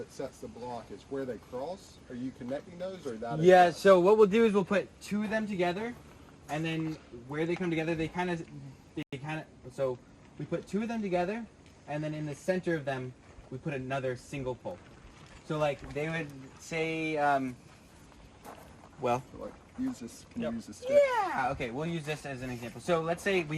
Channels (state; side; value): identical; both; correlation 1.00